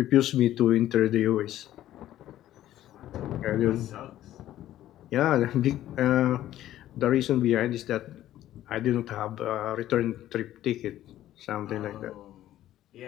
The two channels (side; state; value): right; quieter; 13.2 dB